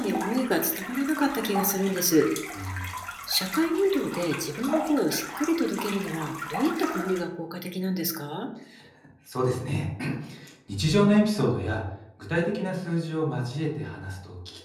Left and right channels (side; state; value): both; identical; correlation 1.00